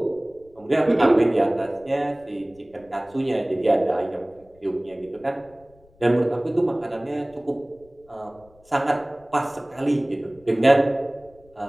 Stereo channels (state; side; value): noise; left; rumble, 29 dB below the sound